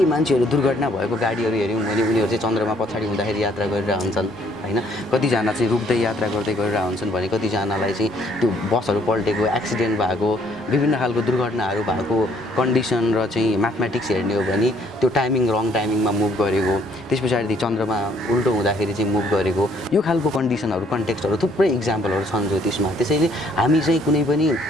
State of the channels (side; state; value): both; normal; correlation 0.64